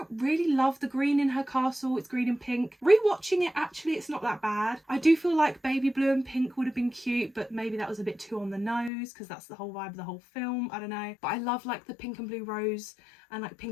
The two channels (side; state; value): right; drops out; at 8.9 s